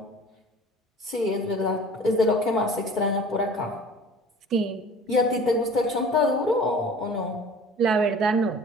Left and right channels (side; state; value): both; normal; correlation 0.44